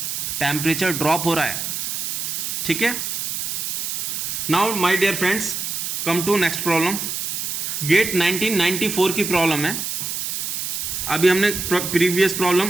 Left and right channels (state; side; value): noise; right; hiss, 3 dB below the sound